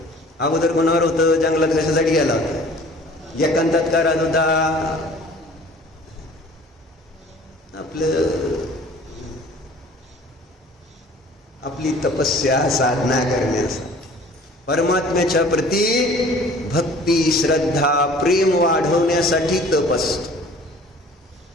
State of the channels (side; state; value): both; normal; correlation 0.49